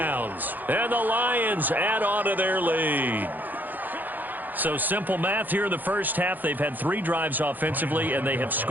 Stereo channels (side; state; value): left; late; 0.085 ms